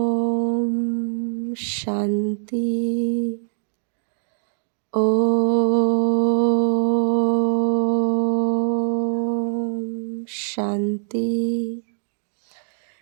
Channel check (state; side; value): silent; left; digital silence